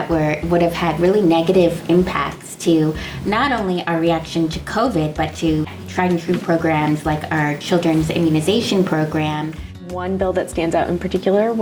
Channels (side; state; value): both; identical; correlation 1.00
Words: would have had really negative impacts to not only our reaction to COVID, but to tried and true programs like our children's immunization program. One bill that stands out in particular